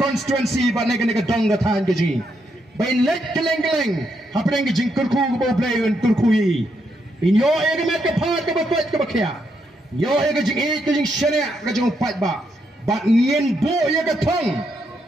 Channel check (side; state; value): both; normal; correlation 0.79